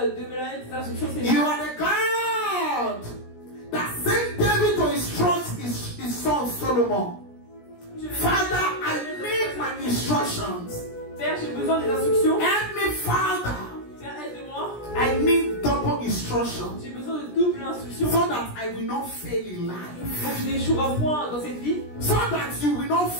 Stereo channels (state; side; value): late; right; 17 ms